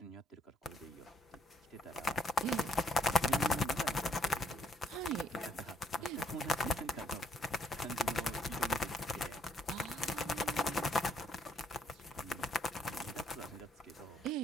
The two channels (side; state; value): both; normal; correlation 0.69